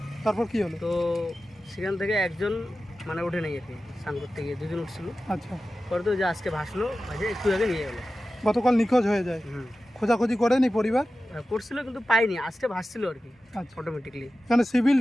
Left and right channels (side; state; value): both; normal; correlation 0.94